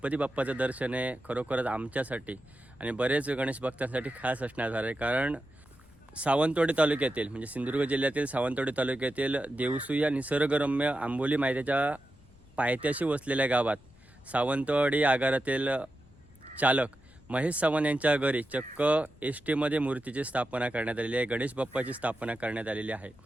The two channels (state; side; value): noise; left; rumble, 26 dB below the sound